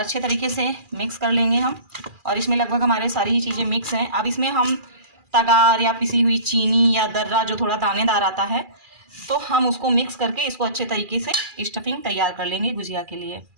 तरीके से मिक्स कर लेंगे हम। और इसमें लगभग हमारे सारी ही चीज़ें मिक्स हैं। अब इसमें हम तगार या पिसी हुई चीनी या दर्रा जो थोड़ा दानेदार आता है, तो हम उसको मिक्स करके इसको अच्छे तरीके से स्टफिंग तैयार कर लेंगे गुजिया के लिए।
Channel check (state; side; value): late; left; 2.4 ms